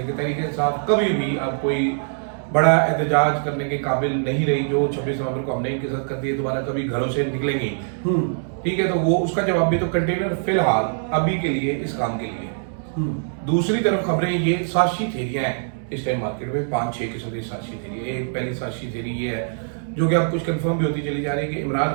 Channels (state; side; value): silent; left; digital silence